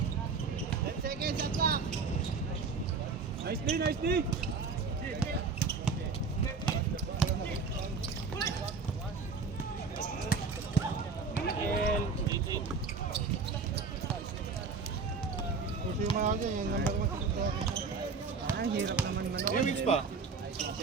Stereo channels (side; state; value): left; quieter; 4.7 dB